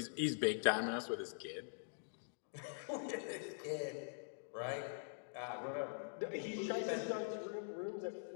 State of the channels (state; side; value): silent; right; digital silence